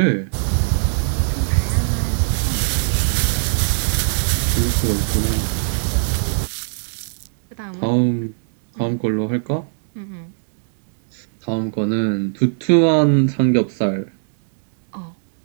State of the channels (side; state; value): left; silent; digital silence